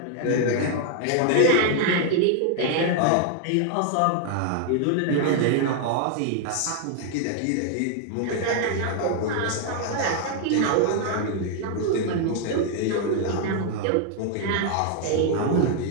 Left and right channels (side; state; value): both; different; correlation 0.00